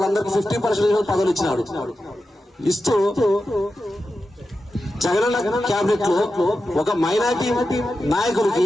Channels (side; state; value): both; normal; correlation 0.91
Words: 50% పదవులు ఇచ్చినాడు. ఇస్తూ జగనన్న క్యాబినెట్ లో ఒక మైనార్టీ నాయకుడికి,